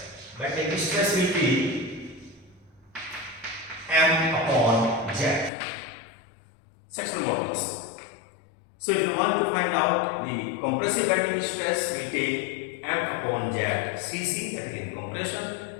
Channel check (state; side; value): drops out; right; at 5.5 s